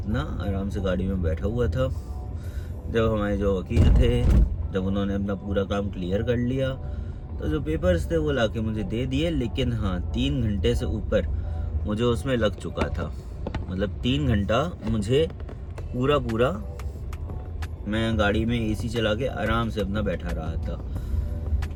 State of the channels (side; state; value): both; identical; correlation 1.00